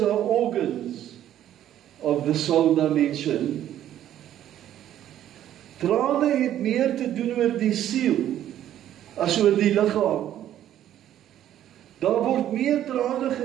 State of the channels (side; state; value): left; quieter; 11.6 dB